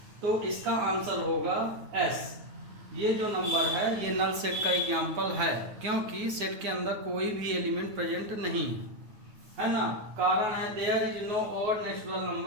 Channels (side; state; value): left; late; 9.4 ms